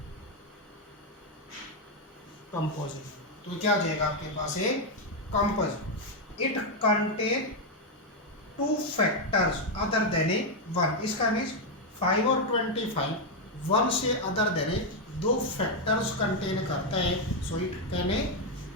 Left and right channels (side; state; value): both; normal; correlation 0.03